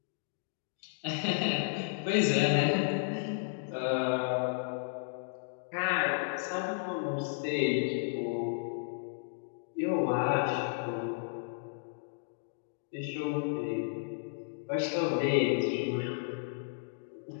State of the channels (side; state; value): right; silent; digital silence